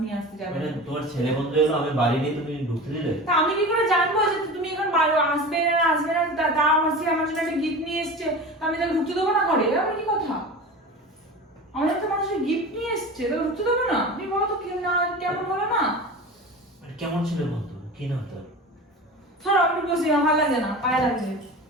নিয়ে আসতে যাবে মানে না। তোমার ছেলে বন্ধু এলো, আমি বাড়ি নেই, তুমি ঢুকতে দিলে? তা আমি কি করে জানবো যে তুমি এখন আসবে না আসবে না? তা আমার জন্য একটা গিফট নিয়ে এসছে, তা আমি তাকে ঢুকতে দেবো না ঘরে? এবার কি কথা? আমাদের তো মানুষের গিফট নিয়ে এসছে, তাকে ঢুকতে দেবো না? তুমি বলো তো কেমন হলো না? মানে কেমন ছিল বন্ধু, কি নাম তোর? ধরো আমি বসি, আমার ভালো লাগে না, পায়ে লাগছে।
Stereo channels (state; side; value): normal; both; correlation 0.33